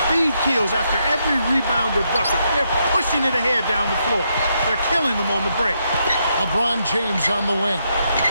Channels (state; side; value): inverted; both; correlation -0.79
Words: Speed kills after every rebound or bucket. They're pushing it ahead down the floor. They're killing them on the break. LeBron James on the wing.